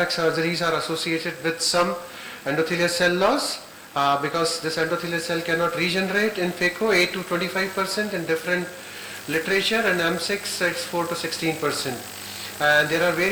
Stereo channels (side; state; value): both; identical; correlation 1.00